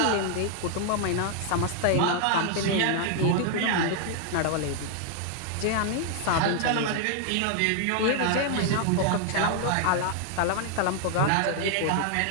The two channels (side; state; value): both; different; correlation 0.00